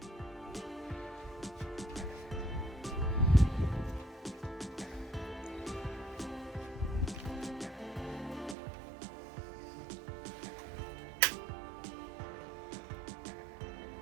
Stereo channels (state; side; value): drops out; left; at 8.6 s